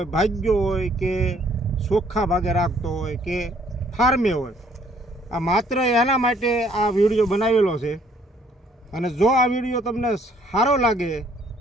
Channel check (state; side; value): normal; both; correlation 0.63